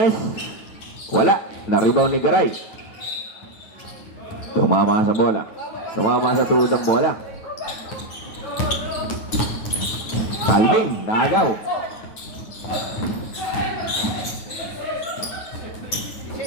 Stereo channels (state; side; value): late; right; 9.0 ms